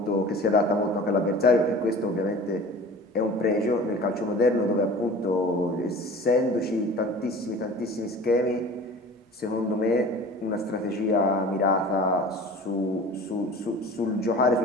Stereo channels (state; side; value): normal; both; correlation 0.41